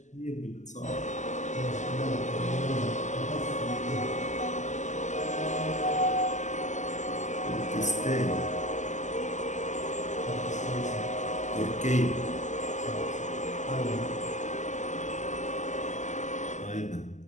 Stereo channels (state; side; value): late; right; 0.34 ms